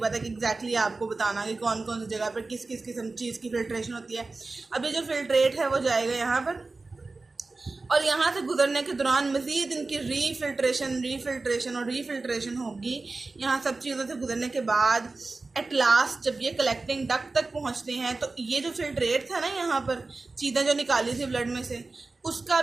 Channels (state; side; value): quieter; left; 3.6 dB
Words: है कि एग्जैक्टली आपको बताना कि कौन कौन सी जगह पर किस किस किस्म चीज़ की फिल्ट्रेशन होती है। अब ये जो फिल्ट्रेट है वो जाएगा यहाँ पर, और यहाँ से गुजरने के दौरान मज़ीद इनकी रीफिल्ट्रेशन और रीफिल्ट्रेशन होगी। यहाँ सब चीज़ों से गुजरने के बाद एट लास्ट जब ये कलेक्टिंग डक्ट तक पहुँचते हैं तो ये जो फिल्ट्रेट था ना, यहाँ पर चीज़ें जो निकाली थी ब्लड में से, उसका